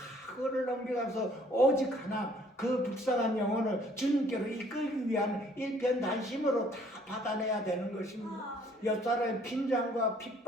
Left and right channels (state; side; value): normal; both; correlation 0.60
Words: 그거를 넘겨가서 오직 하나 그 불쌍한 영혼을 주님께로 이끌기 위한 일편단심으로 다 받아내야 되는 것입니다. 옆사람의 빈장과